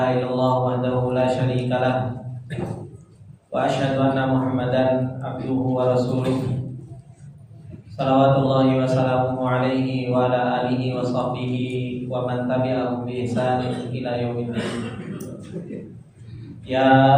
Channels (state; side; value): identical; both; correlation 1.00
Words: illallah wahdahu la syarika lahu wa asyhadu anna Muhammadan abduhu wa rasuluh. Salawatullahi wa salamuhu alaihi wa ala alihi wa sahbihi wa man tabi'ahum bi ihsanin ila yaumiddin.